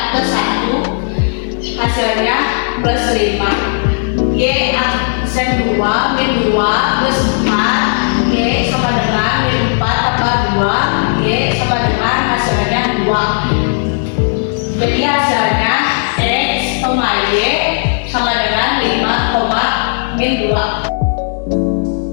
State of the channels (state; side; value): silent; right; digital silence